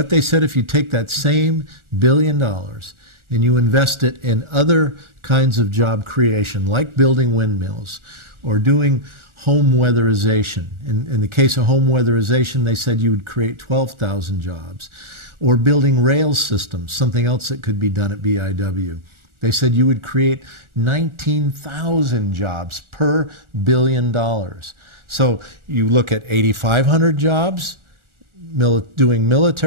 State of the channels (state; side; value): late; left; 1.4 ms